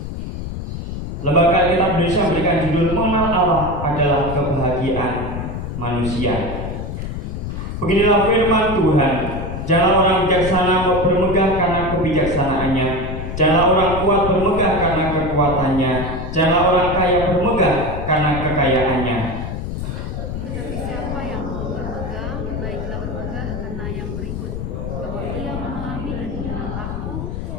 Lembaga Alkitab Indonesia memberikan judul "Mengenal Allah adalah Kebahagiaan Manusia". Beginilah firman Tuhan: janganlah orang bijaksana bermegah karena kebijaksanaannya, janganlah orang kuat bermegah karena kekuatannya, janganlah orang kaya bermegah karena kekayaannya. Tetapi siapa yang mau bermegah, baiklah bermegah karena yang berikut, bahwa ia memahami dan mengenal aku,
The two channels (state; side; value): noise; left; rumble, 5 dB below the sound